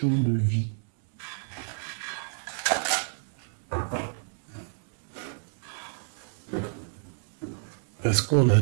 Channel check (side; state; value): left; silent; 58 dB below the other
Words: de vie. Parce qu'on a